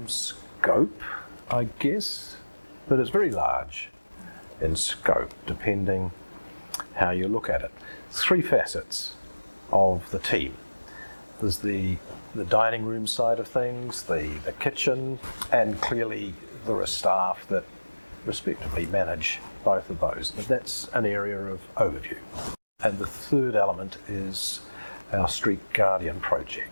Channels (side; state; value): both; inverted; correlation -1.00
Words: scope, I guess, but it's very large in scope, depending how you look at it. Three facets of the team. There's the dining room side of things, the kitchen, and clearly there are staff that respectively manage both of those. But that's an area of overview. And the third element is our Street Guardian